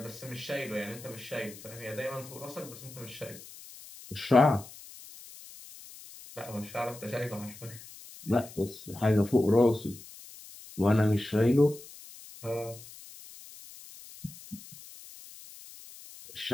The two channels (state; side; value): noise; left; hiss, 17 dB below the sound